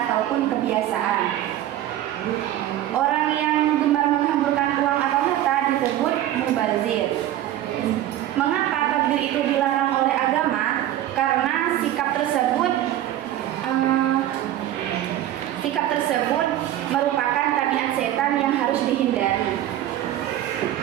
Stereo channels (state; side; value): quieter; left; 12.9 dB